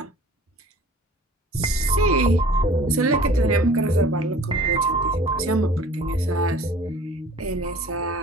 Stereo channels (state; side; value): normal; both; correlation 0.47